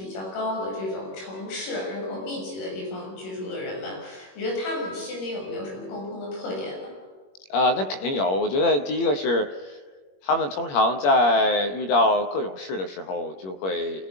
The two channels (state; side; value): late; right; 21 ms